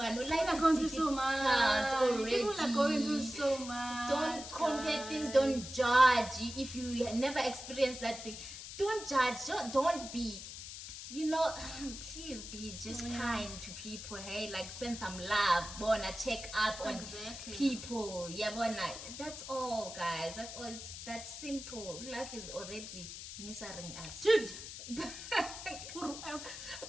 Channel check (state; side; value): noise; left; hiss, 10 dB below the sound